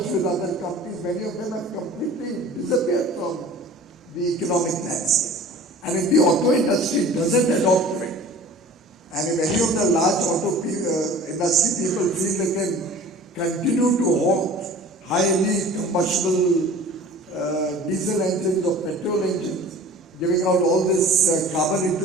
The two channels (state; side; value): normal; both; correlation 0.43